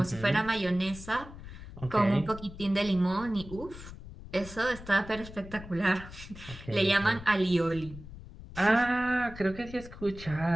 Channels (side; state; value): left; noise; rumble, 15 dB below the sound